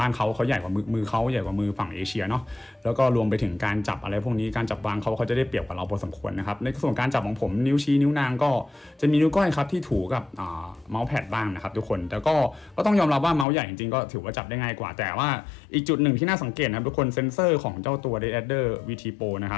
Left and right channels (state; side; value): drops out; right; at 13.5 s